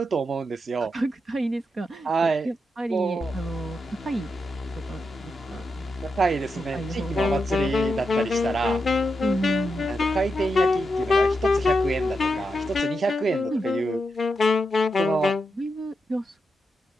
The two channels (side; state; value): both; normal; correlation 0.86